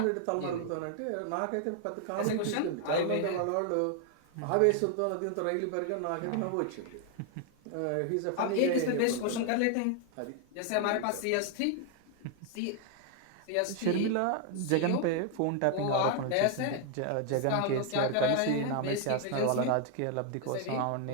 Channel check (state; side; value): different; both; correlation 0.00